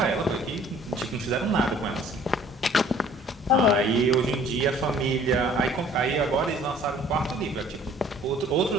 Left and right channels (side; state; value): both; normal; correlation 0.54